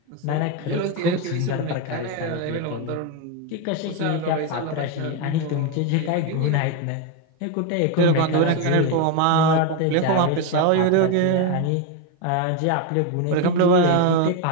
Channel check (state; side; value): different; both; correlation 0.02